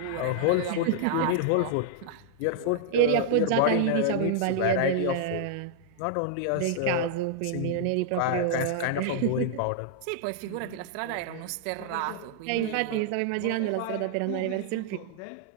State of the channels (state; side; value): different; both; correlation -0.01